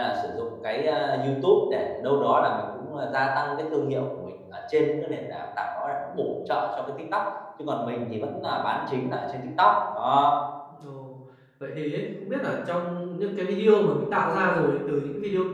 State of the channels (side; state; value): both; identical; correlation 1.00